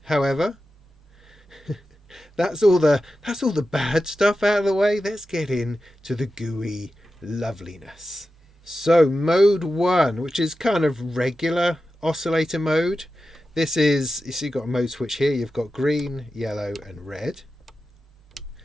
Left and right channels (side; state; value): both; normal; correlation 0.92